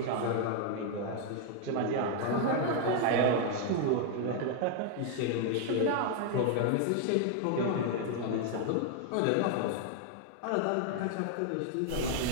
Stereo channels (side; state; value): both; different; correlation 0.00